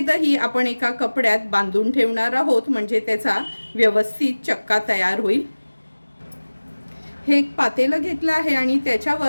आपण एका कपड्यात बांधून ठेवणार आहोत, म्हणजे त्याचा व्यवस्थित चक्का तयार होईल। हे एक पातेलं घेतलं आहे आणि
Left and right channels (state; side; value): inverted; both; correlation -1.00